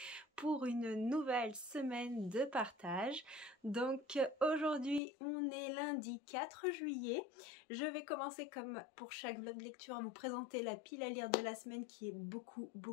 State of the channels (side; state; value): right; drops out; at 5.0 s